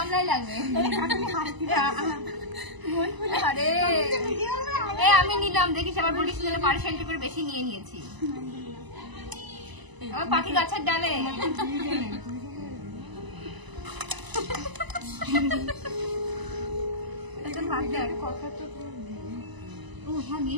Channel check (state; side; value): late; left; 1.0 ms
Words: লাগবে? আরে এই আমি নিলাম, দেখিস আবার বলিস পার্সেন্ট করে বেশি নিয়ে নিয়েছি। পাখি গাছের ডালে